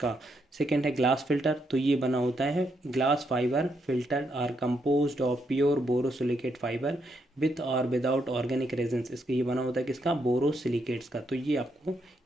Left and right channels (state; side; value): normal; both; correlation 0.78